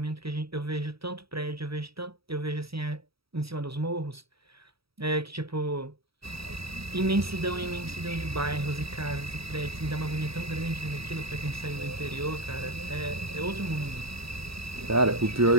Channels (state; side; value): late; left; 0.76 ms